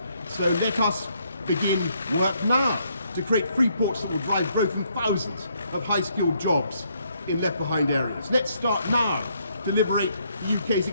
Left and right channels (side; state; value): both; inverted; correlation -0.71